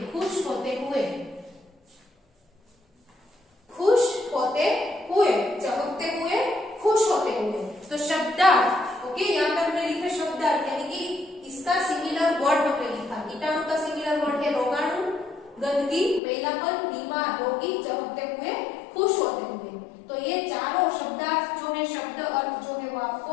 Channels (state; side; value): drops out; right; at 16.2 s